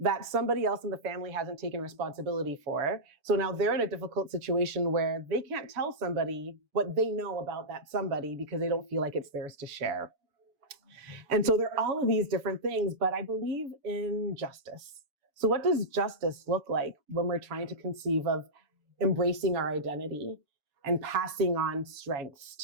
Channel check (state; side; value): late; left; 7.1 ms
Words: that somebody else in the family hasn't taken responsibility for. So now they're in a difficult situation where they can't tell somebody what they know about that somebody because they don't feel like it's theirs to share. And so there are all of these different things, but I believe in justice. So what does justice look like when we're trying to conceive of embracing our identity and passing on strengths